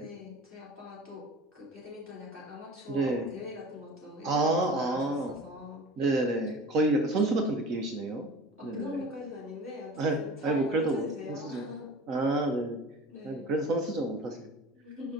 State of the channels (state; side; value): normal; both; correlation 0.39